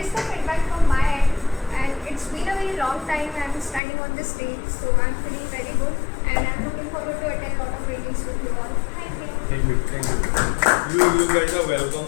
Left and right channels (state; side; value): drops out; right; at 3.8 s